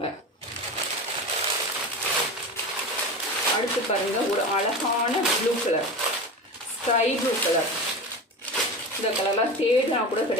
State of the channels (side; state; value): both; normal; correlation 0.28